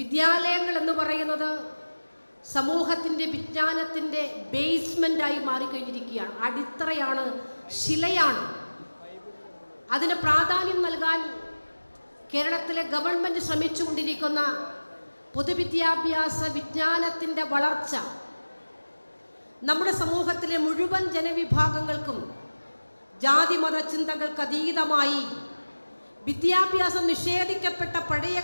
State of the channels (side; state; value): both; inverted; correlation -1.00